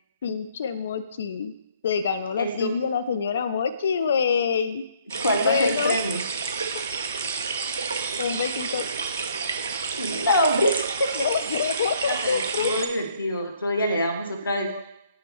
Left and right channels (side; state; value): both; inverted; correlation -0.64